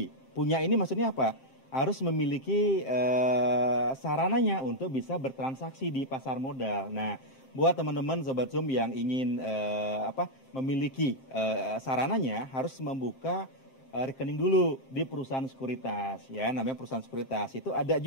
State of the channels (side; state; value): right; late; 7.6 ms